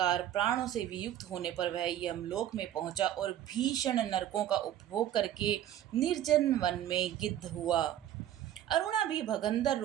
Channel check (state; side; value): quieter; left; 11.7 dB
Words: प्राणों से वियुक्त होने पर वह यमलोक में पहुंचा और भीषण नरकों का उपभोग करके निर्जन वन में गिद्ध हुआ। अरुणा भी भगंदर